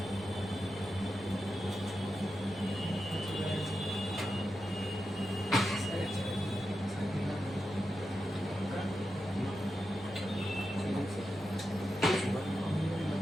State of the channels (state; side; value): normal; both; correlation 0.89